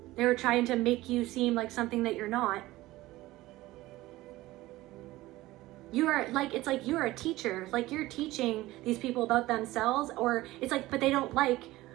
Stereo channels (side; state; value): left; quieter; 17.8 dB